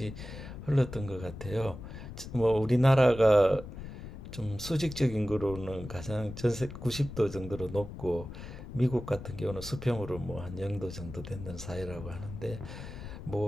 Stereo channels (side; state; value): left; noise; rumble, 11 dB below the sound